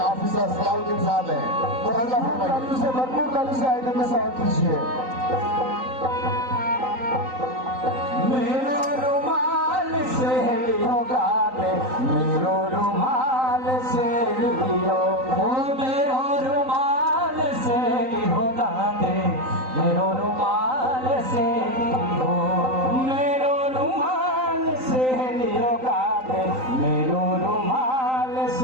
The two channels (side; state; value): left; late; 3.9 ms